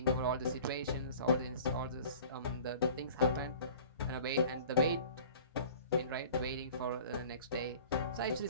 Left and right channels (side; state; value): both; inverted; correlation -0.44